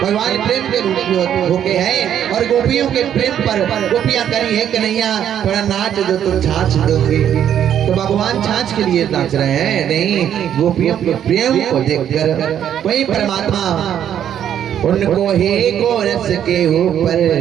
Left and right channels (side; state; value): left; quieter; 9.8 dB